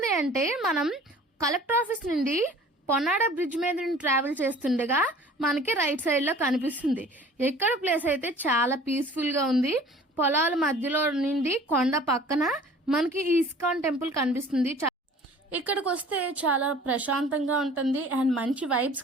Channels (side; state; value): both; normal; correlation 0.48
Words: అంటే మనం కలెక్టర్ ఆఫీస్ నుండి పొన్నాడ బ్రిడ్జ్ మీద నుండి ట్రావెల్ చేస్తుండగా మనకి రైట్ సైడ్లో కనిపిస్తుంది. ఎక్కడ ప్లేస్ అయితే చాలా పీస్ఫుల్గా ఉంది. పొలాల మధ్యలో నుండి కొండ పక్కన మనకి ఈ ఇస్కాన్ టెంపుల్ కనిపిస్తుంది. ఇక్కడికి వస్తే చాలా ప్రశాంతంగా ఉంటుంది అండ్ మంచి వైబ్స్